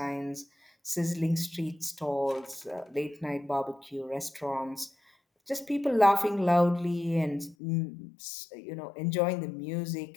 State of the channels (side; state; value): right; drops out; at 7.6 s